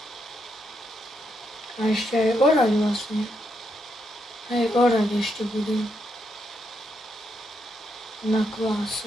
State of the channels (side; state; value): both; normal; correlation 0.80